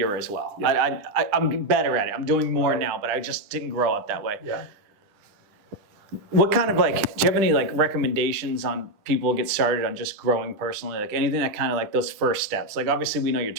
as well. Yeah. I'm better at it. I'm doing more now, but I just didn't grow up that way. Yeah. What kind of do you have any recommendations on people get started on just growing personally? Like anything that kind of like those first steps, like obviously we know your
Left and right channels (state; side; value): late; left; 10 ms